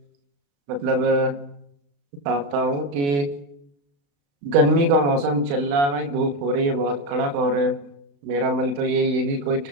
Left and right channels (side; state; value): left; late; 35 ms